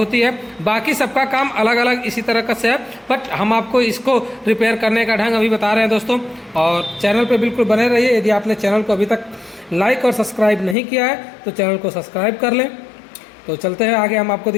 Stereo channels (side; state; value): right; drops out; at 10.8 s